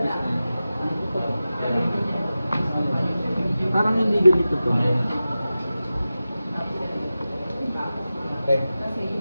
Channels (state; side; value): inverted; both; correlation -0.95